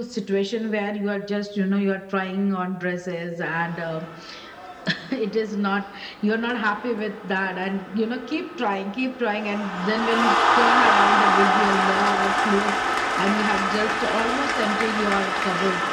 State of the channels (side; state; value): both; identical; correlation 1.00